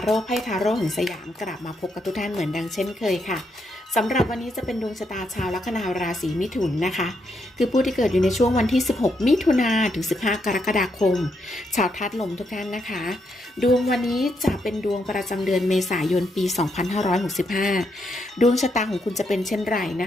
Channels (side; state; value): both; normal; correlation 0.79